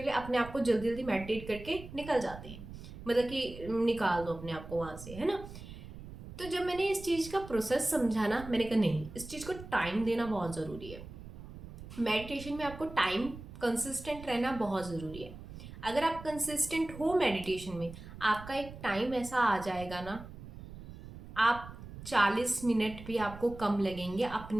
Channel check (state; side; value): noise; right; rumble, 14 dB below the sound